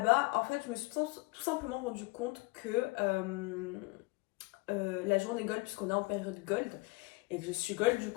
en fait, je me suis tout simplement rendu compte que la journée gold, puisqu'on est en période gold et que je suis gold, du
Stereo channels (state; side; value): quieter; right; 25.7 dB